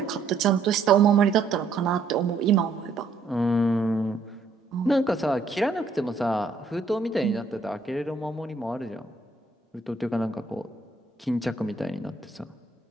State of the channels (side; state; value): left; quieter; 3.9 dB